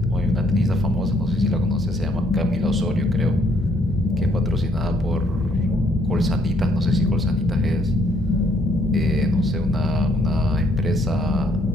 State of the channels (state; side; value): normal; both; correlation 0.68